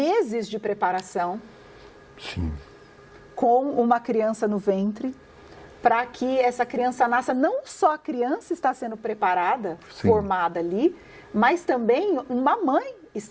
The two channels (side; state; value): both; identical; correlation 1.00